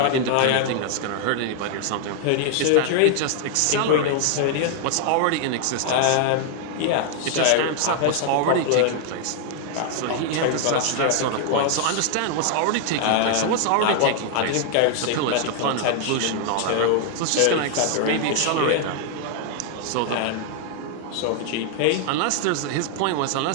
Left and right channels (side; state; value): both; different; correlation 0.00